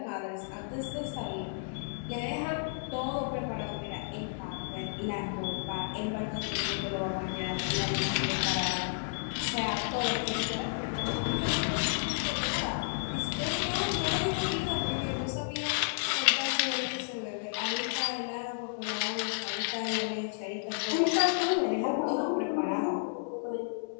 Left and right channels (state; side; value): silent; right; digital silence